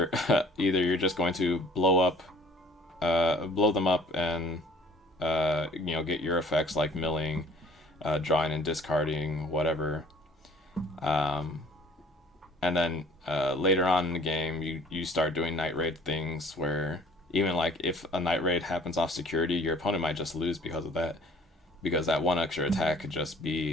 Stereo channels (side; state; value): both; normal; correlation 0.53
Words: you're just going to blow them up and get your effects like milling, drawing and discarding, whatever. And then later on in the game, you start doing night raid things where even like if a night raid happens off security, your opponent might just lose because of that, because that one extra attack could just